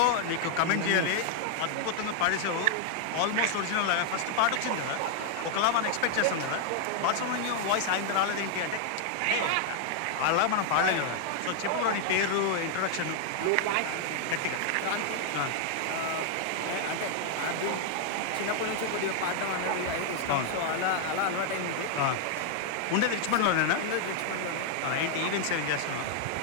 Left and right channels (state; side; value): different; both; correlation 0.00